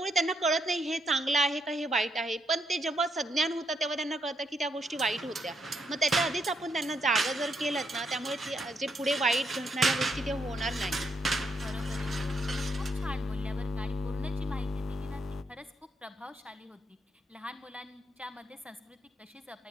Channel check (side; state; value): both; normal; correlation 0.77